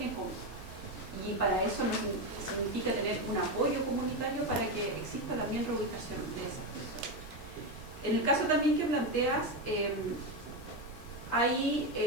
común. Y para eso significa tener un apoyo comunitario para que exista también reubicación de esas personas. En el caso también que planteas, hay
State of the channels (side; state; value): both; normal; correlation 0.11